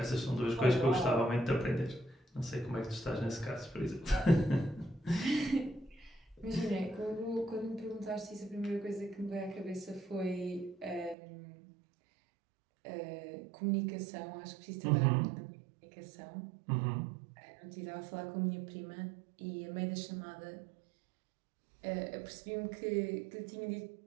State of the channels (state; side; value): drops out; left; at 11.2 s